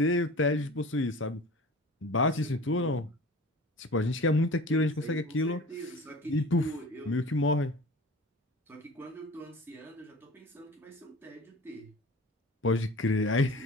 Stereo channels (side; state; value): both; normal; correlation 0.39